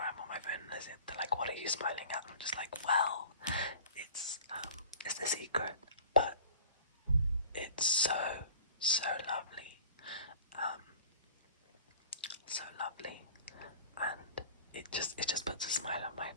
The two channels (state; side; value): inverted; both; correlation -0.43